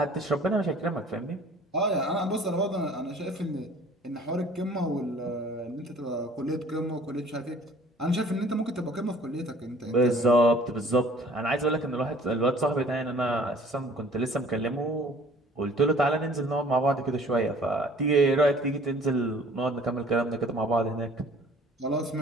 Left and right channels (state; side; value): normal; both; correlation 0.52